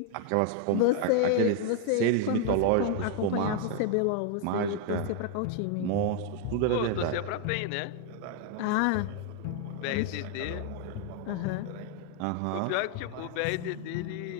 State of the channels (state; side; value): different; both; correlation 0.00